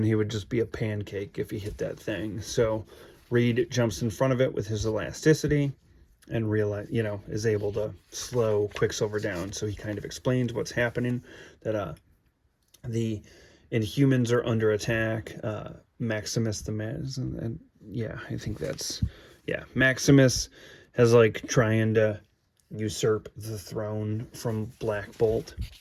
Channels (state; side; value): identical; both; correlation 1.00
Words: he would just be a pancake if he hit that thing. So Reed jumps in front of it with his elasticity and is able to slow Quicksilver down. So he kind of explains what's happening, that the Inhumans are under attack. Maximus the Maz, and yeah, I think that's, yeah, Maximus has like trying to usurp the throne from Black Bolt,